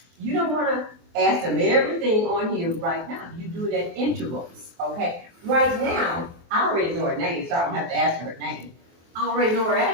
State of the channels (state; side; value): late; left; 23 ms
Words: You don't want to ask them everything on here right now. You do it at intervals, okay? Right now, I already know her name, so I don't have to ask her her name. I already know her